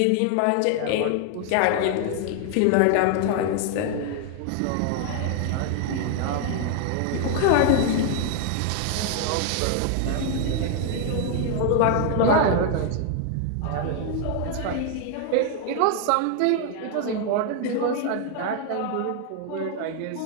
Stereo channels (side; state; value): both; different; correlation 0.00